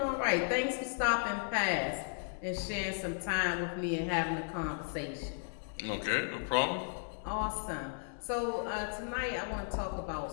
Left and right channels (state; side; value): silent; right; digital silence